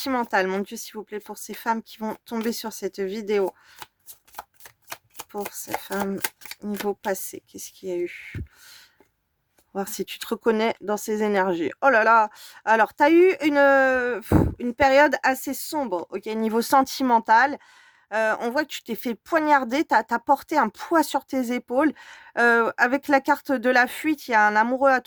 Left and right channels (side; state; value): both; identical; correlation 1.00